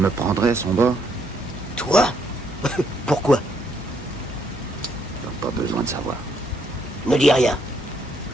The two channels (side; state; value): both; normal; correlation 0.71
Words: prendrait son bord? Toi? Pourquoi? Pas besoin de savoir. Ne dis rien.